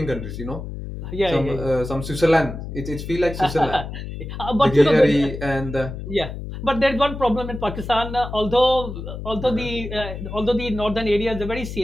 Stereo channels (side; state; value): left; noise; hum, 8 dB below the sound